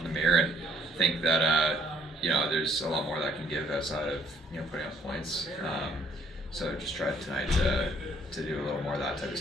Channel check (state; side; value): normal; both; correlation 0.64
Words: the mirror and think that there's a lot more that I can give outside of putting up points. So just try tonight to do a little more of that type of